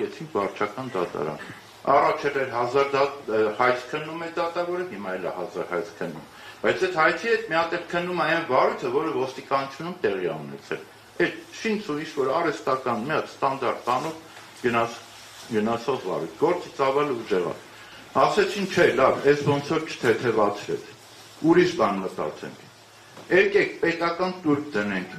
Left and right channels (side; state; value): both; identical; correlation 1.00